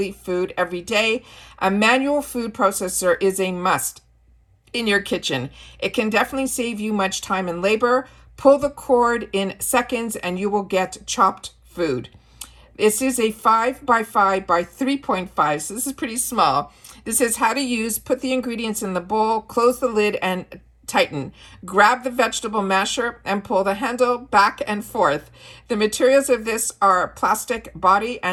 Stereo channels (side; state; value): both; identical; correlation 1.00